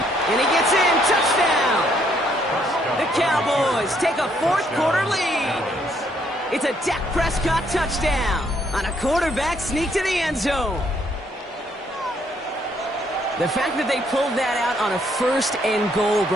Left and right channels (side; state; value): both; normal; correlation 0.69